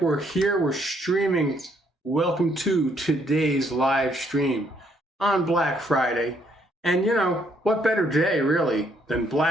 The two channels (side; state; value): both; normal; correlation 0.69